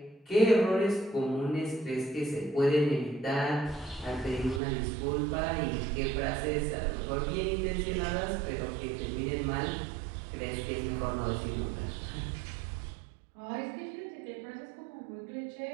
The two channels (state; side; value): drops out; left; at 4.6 s